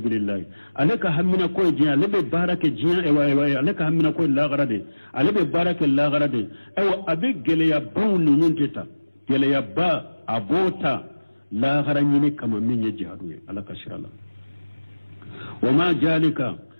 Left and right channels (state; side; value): inverted; both; correlation -1.00